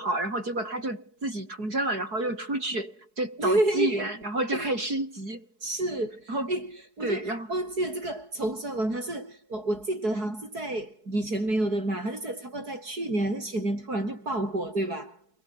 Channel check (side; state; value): left; late; 4.7 ms